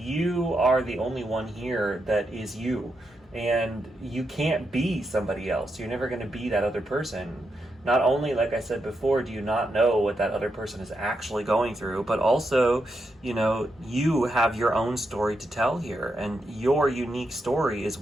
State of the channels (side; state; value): both; normal; correlation 0.84